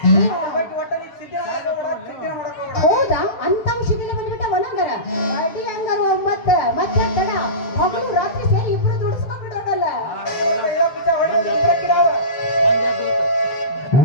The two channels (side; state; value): right; late; 7.7 ms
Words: ಒಟ್ಟ ನೀ ಸಿದ್ಧ ಮಾಡಕ್ ಹೋಗ್ಬೇಡ ಹೌದಾ ಅಂತ ಔಷಧಿನ ಬಂದ್ಬಿಟ್ಟ ಒಣಂಗರ ಅಡಿ ಹಂಗಾರ ಮತ್ತೆ ಮತ್ತೆ ತಡ ಹಗಲು ರಾತ್ರಿ ಸೇರಿ ಇಬ್ರು ದುಡಿಸ್ಕೊಂಡ್ಬಿಡೋದಲ್ಲ